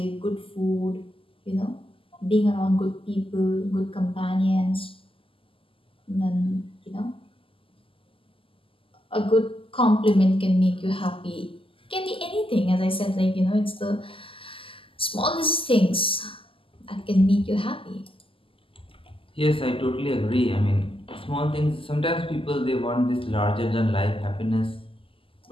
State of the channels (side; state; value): right; late; 0.26 ms